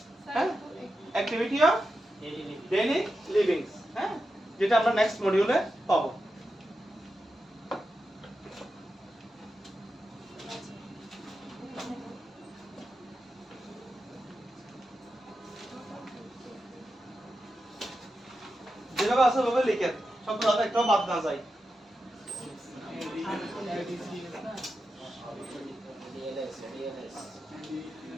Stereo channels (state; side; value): normal; both; correlation 0.89